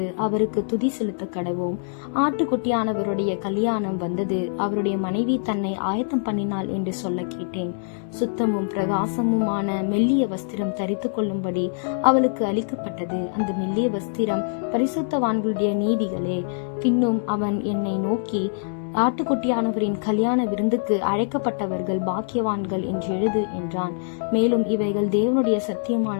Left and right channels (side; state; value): right; silent; digital silence